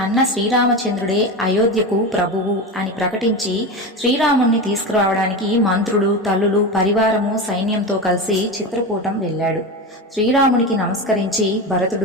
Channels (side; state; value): both; normal; correlation 0.22